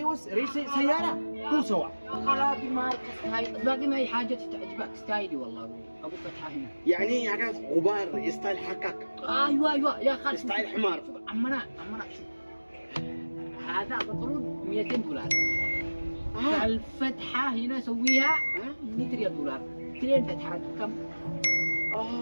ريس سياره هو سوا. خلاص مارك ستايل، باقي ما هي حاجه تعجبك ستايلي والله ابو فتحه هنا. يعني حاجات غبار ستايل حقك. ايوه يا خالد. ستايل حمار. شوف عمنا شوف. هذا بطرون 200 دولار. الفتحه هنا سويها 100 ريال دولار. 2 فتحات كم؟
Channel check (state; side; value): inverted; both; correlation -1.00